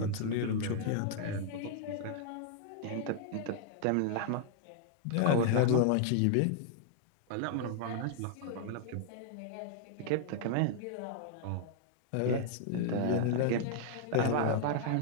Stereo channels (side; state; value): both; different; correlation -0.01